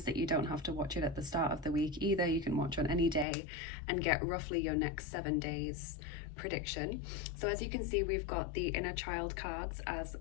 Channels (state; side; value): drops out; right; at 3.2 s